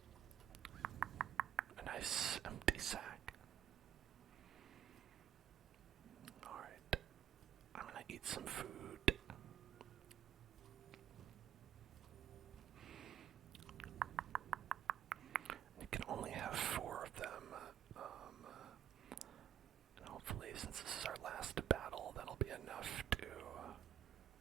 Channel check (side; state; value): left; quieter; 10.4 dB